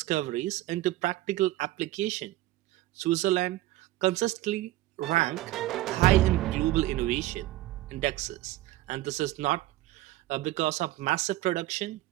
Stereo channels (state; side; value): quieter; left; 16.6 dB